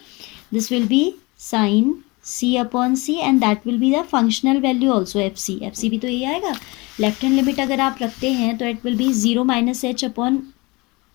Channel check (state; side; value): quieter; right; 24.9 dB